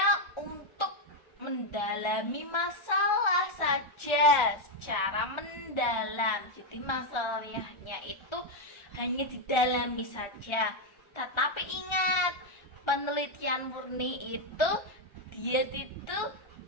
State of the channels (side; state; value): right; late; 1.3 ms